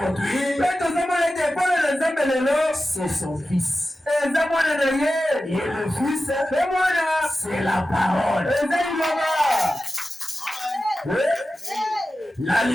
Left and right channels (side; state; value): both; normal; correlation 0.93